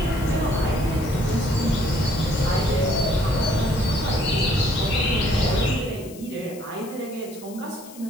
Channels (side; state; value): left; noise; hiss, 19 dB below the sound